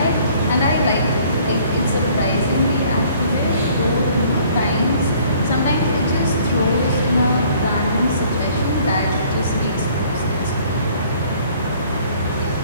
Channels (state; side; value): inverted; both; correlation -0.57